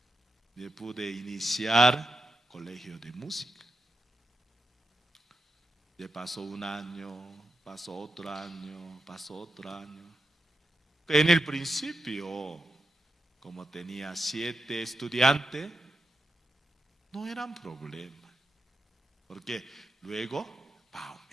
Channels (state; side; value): normal; both; correlation 0.88